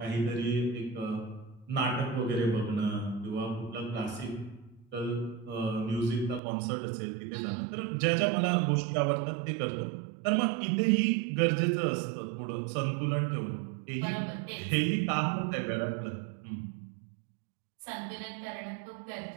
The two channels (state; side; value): drops out; left; at 6.4 s